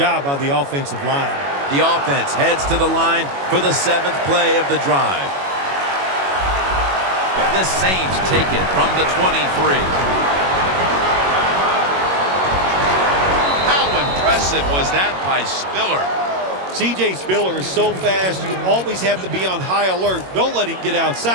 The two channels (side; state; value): left; late; 21 ms